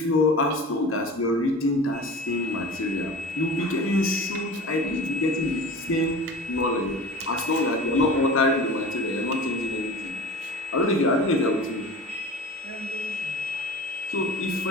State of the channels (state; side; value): normal; both; correlation 0.36